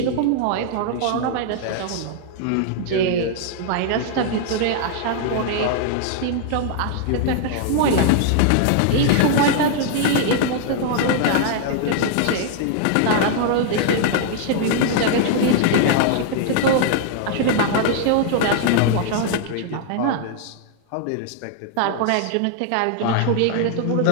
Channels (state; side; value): different; both; correlation 0.00